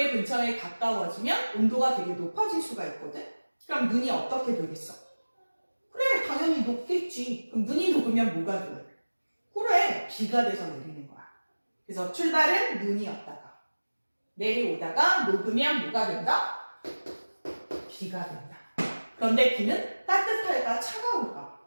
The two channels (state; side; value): inverted; both; correlation -1.00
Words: 근처에 가까워지면 온도가 되게 높아질 수가 있거든? 그럼 눈이 어떻게 되겠어? 그래, 당연히 녹겠지. 그럼 눈이 녹으면 뭐가 돼? 그래, 비가 돼서 내리는 거야. 그래서 출발은 눈이었다가 내려오다가 녹으면 뭐가 된다? 비가 된다. 그런데 비는 따뜻할까 차가울까?